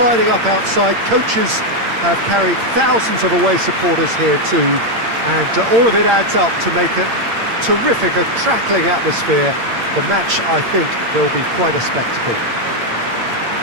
up outside. Coaches have carried thousands of away supporters here too, and all of it adds up to make it terrific, a crackling atmosphere. The match, I think, will be quite a spectacle.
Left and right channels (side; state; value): left; late; 8.7 ms